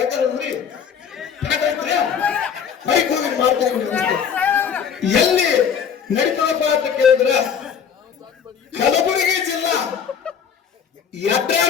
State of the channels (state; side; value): quieter; right; 7.4 dB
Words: ಎಲ್ಲಿ ನಡೀತದಪ್ಪ ಅಂತ ಕೇಳಿದ್ರ ಕಲಬುರಗಿ ಜಿಲ್ಲಾ